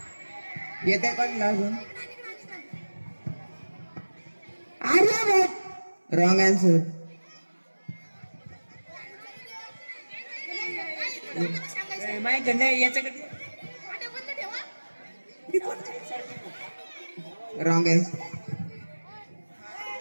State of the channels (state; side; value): inverted; both; correlation -1.00